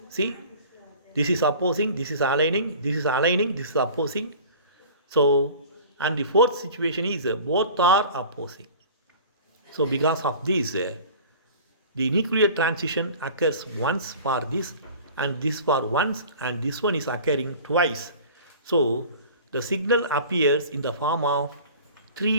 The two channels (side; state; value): both; inverted; correlation -0.42